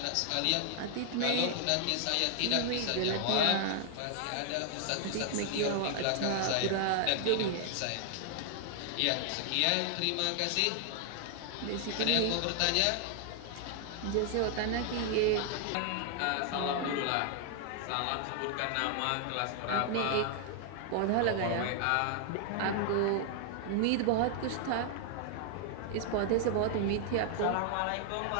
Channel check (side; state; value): both; different; correlation 0.00